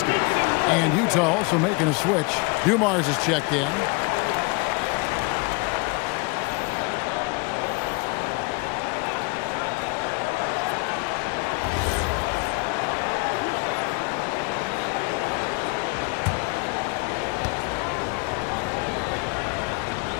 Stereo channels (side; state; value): right; quieter; 29.5 dB